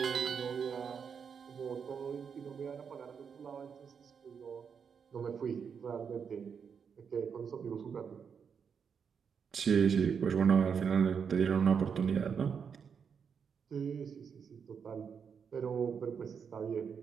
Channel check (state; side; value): quieter; left; 6.7 dB